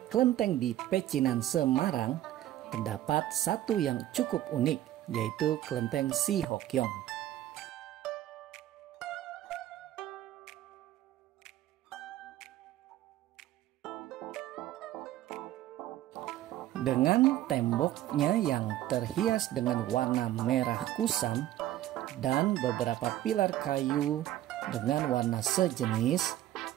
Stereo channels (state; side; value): quieter; left; 13.5 dB